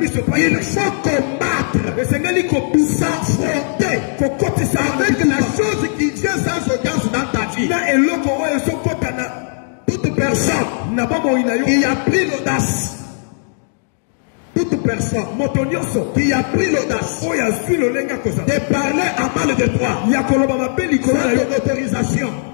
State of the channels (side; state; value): right; silent; digital silence